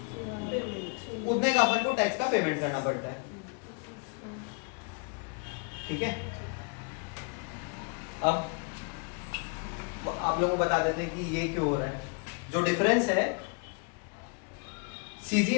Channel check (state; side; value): quieter; right; 35.9 dB